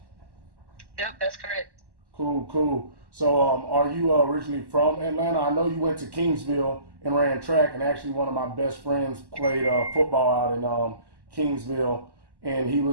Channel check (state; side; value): late; left; 1.1 ms